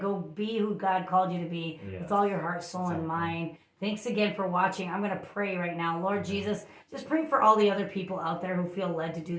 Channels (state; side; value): identical; both; correlation 1.00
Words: be who God called you to be with all your heart, soul, and mind. Thanks again for watching. I'm going to pray right now. Lord Jesus, just pray for all the other people out there who feel led to do